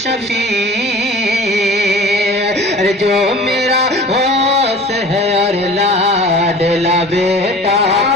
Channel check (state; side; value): normal; both; correlation 0.42